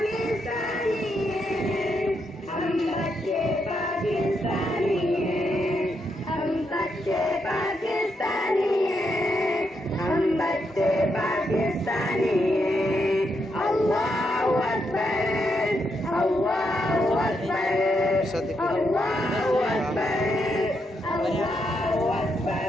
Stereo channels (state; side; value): normal; both; correlation 0.80